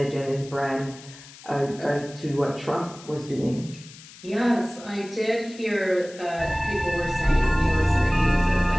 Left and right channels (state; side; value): noise; left; hiss, 19 dB below the sound